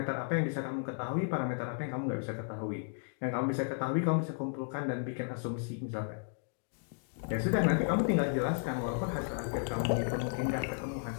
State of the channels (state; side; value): silent; right; 55 dB below the other